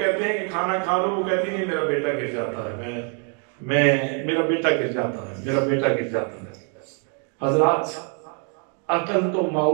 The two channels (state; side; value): quieter; left; 38.4 dB